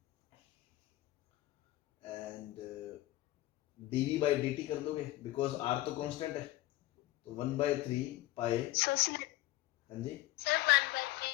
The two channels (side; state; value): right; quieter; 17.0 dB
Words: and dv by dt कर दोगे, बिकॉज r तो कांस्टेंट है, तो 1/3 पाई। हाँ जी सर